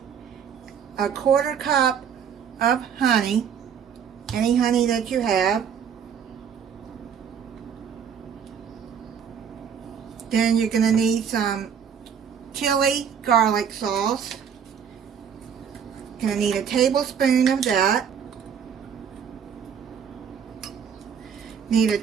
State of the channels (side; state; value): left; quieter; 7.6 dB